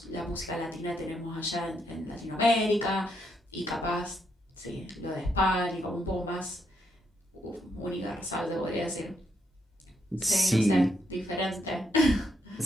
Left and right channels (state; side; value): normal; both; correlation 0.77